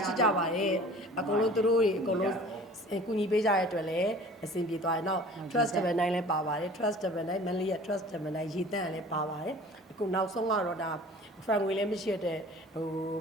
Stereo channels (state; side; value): normal; both; correlation 0.45